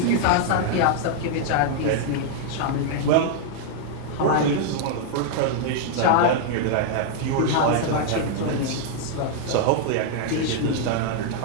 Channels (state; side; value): different; both; correlation -0.01